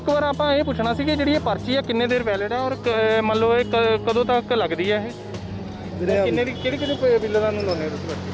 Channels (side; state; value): both; identical; correlation 1.00